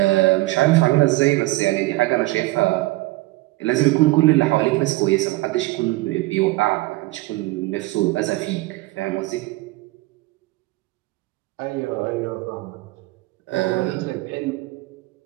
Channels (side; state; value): left; quieter; 20.4 dB